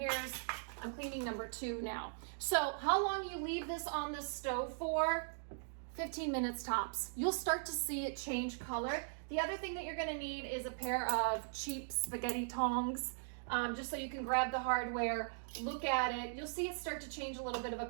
I'm cleaning number 2 now. So how long you leave this on the stove for? 15 minutes tops. You'll start to see it change color. The other thing that you're gonna need is a pair of cheap spaghetti tongs, just so you can grab the hardware, look at it. You'll see it start to change a little bit of a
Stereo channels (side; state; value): left; silent; digital silence